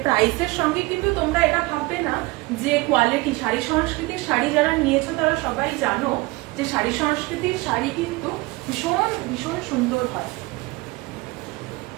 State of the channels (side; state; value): left; quieter; 23.1 dB